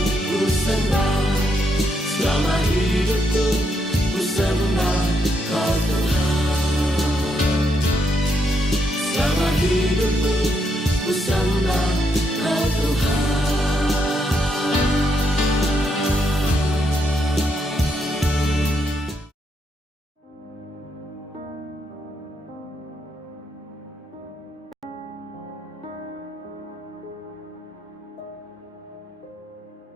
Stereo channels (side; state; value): both; normal; correlation 0.78